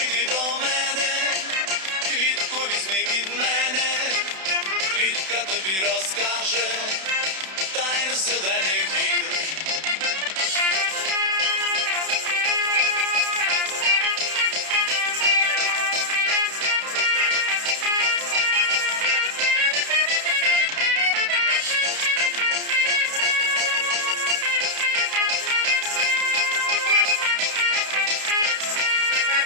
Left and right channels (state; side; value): late; left; 31 ms